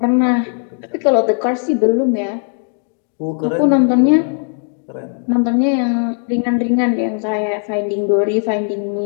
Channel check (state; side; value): silent; right; 55 dB below the other